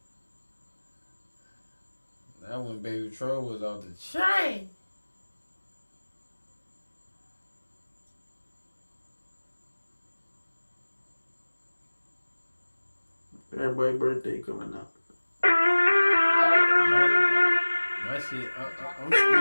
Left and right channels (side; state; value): both; inverted; correlation -1.00